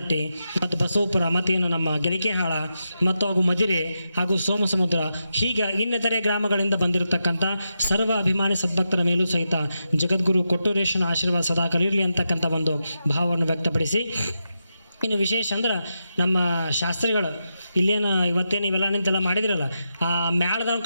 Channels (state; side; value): inverted; both; correlation -0.87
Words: ಮತ್ತು ಬಸವಪುರ ಮತ್ತೇನು ನಮ್ಮ ಗೆಲಿಕೆಹಾಳ ಮತ್ತು ಹಾಗೂ ಮದಿರೆ ಹಾಗೂ ಸೋಮಸಮುದ್ರ, ಹೀಗೆ ಇನ್ನಿತರೆ ಗ್ರಾಮಗಳಿಂದ ಬಂದಿರತಕ್ಕಂಥ ಸರ್ವ ಅಭಿಮಾನಿ ಸದ್ಭಕ್ತರ ಮೇಲೂ ಸಹಿತ ಜಗದ್ಗುರು ಕೊಟ್ಟೂರೇಶನ ಆಶೀರ್ವಾದ ಸದಾಕಾಲ ಇರಲಿ ಅಂತಕ್ಕಂಥ ಒಂದು ಭಾವವನ್ನು ವ್ಯಕ್ತಪಡಿಸಿ, ಇನ್ನು ವಿಶೇಷ ಅಂದ್ರೆ ನಮ್ಮ ಶಾಸ್ತ್ರಿಗಳು ಇಲ್ಲೇನು ಇವತ್ತೇನು ಇವೆಲ್ಲ ನಿಂತೆಲ್ಲ ಮಾಡಿದ್ರಲ್ಲ, ಆ ಮ್ಯಾಳ್ದಾರ